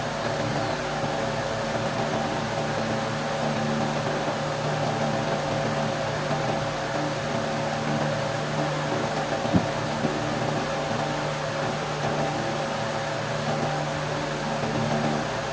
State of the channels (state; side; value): identical; both; correlation 1.00